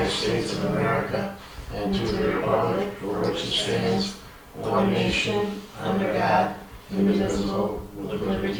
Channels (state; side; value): identical; both; correlation 1.00